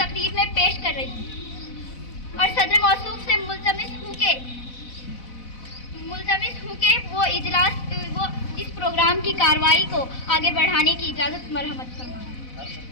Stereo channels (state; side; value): late; right; 4.0 ms